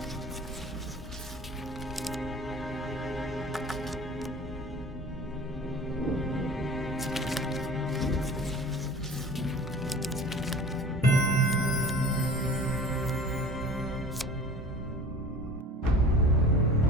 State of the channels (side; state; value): both; normal; correlation 0.42